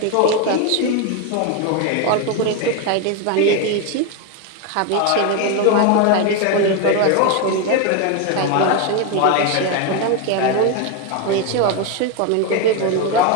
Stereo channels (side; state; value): both; different; correlation 0.02